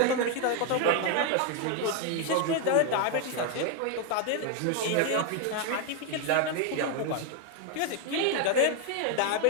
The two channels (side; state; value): both; different; correlation 0.01